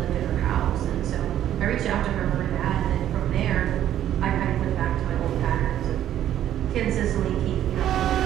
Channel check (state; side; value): quieter; left; 11.5 dB